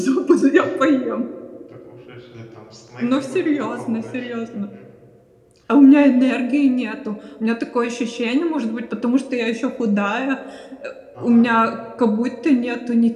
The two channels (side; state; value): both; identical; correlation 1.00